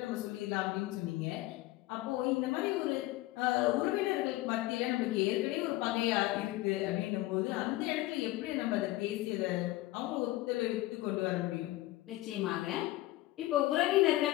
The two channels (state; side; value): quieter; right; 17.7 dB